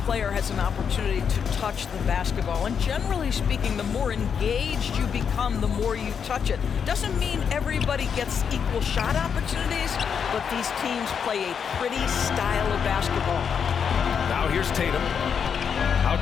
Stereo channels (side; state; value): right; quieter; 7.0 dB